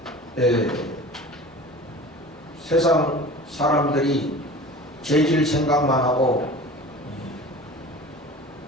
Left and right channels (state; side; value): normal; both; correlation 0.38